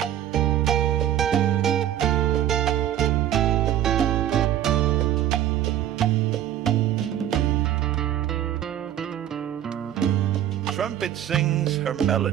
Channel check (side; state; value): left; quieter; 11.4 dB